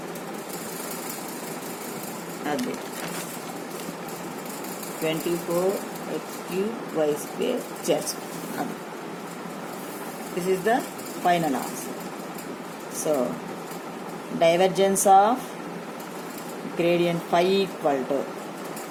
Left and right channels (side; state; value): both; identical; correlation 1.00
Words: అది 24x cube y square z. This is the final answer. So divergence of gradient 5 equal to